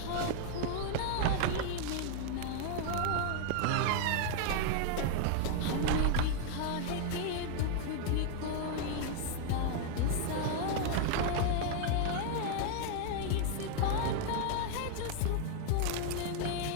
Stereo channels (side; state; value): both; different; correlation 0.00